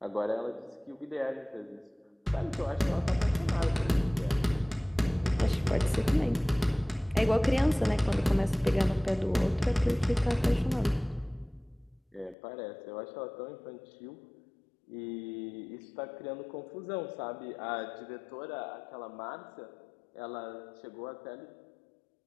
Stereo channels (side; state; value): right; drops out; at 12.4 s